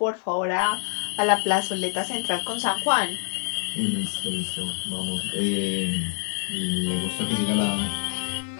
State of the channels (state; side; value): silent; right; digital silence